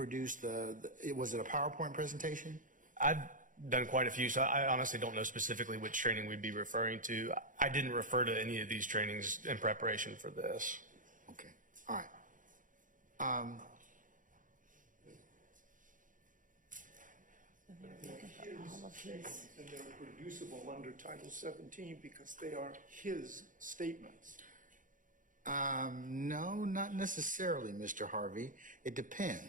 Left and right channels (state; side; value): late; left; 0.38 ms